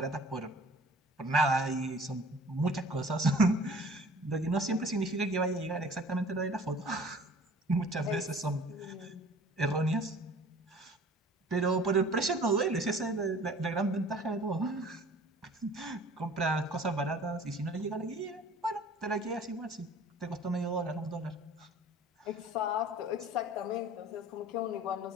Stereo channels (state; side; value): normal; both; correlation 0.48